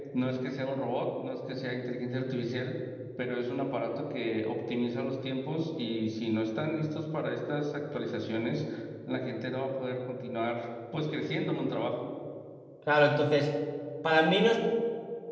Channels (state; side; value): identical; both; correlation 1.00